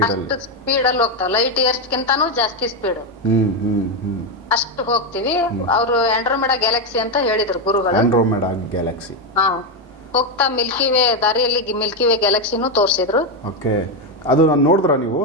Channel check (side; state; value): both; normal; correlation 0.07